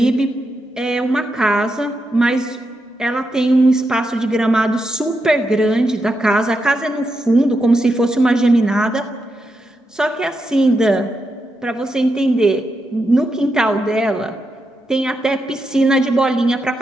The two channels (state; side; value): normal; both; correlation 0.85